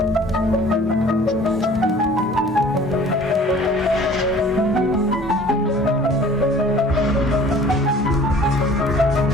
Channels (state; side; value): normal; both; correlation 0.50